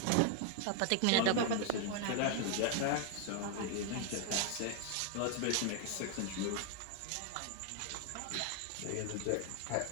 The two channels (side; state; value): both; different; correlation 0.00